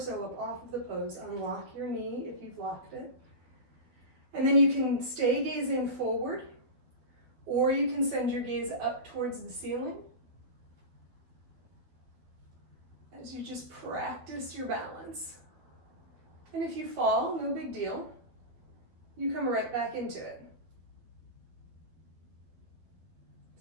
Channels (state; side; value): late; left; 12 ms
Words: up off of the pose. Unlock your knee if you've locked it. And then you can stay gazing forward, or you can send your gaze up towards the ceiling as you just practice your balance. And if you fall, no big deal. You come right back into it.